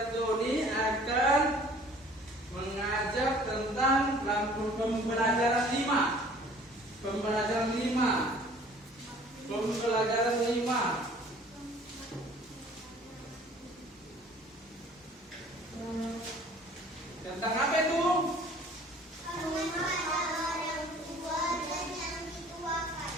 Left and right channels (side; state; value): both; normal; correlation 0.52